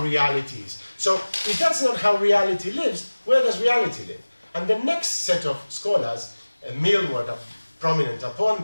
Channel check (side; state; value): both; inverted; correlation -1.00